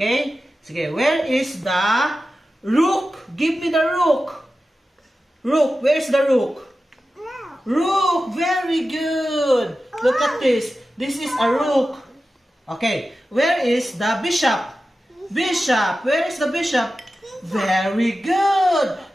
Sige, where is the rook? Give me the rook. Rook, where's the rook? Rook, very good. Look at this. This is a rook. Okay, where is the bishop? Bishop, where is the bishop? Very good.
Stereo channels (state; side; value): normal; both; correlation 0.93